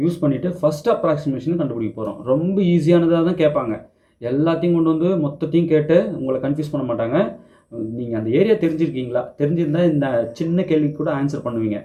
யூஸ் பண்ணிவிட்டு ஃபஸ்ட் அப்ராக்சிமேஷன் கண்டுபிடிக்க போகிறோம். ரொம்ப ஈஸியானதாக தான் கேட்பாங்க. எல்லாத்தையும் கொண்டு வந்து மொத்தத்தையும் கேட்டு உங்களை கன்ஃபியூஸ் பண்ண மாட்டாங்க. நீங்கள் அந்த ஏரியா தெரிஞ்சிருக்கீங்களா, தெரிஞ்சிருந்தால் இந்த சின்ன கேள்விக்கு கூட ஆன்சர் பண்ணுவீங்க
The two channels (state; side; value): identical; both; correlation 1.00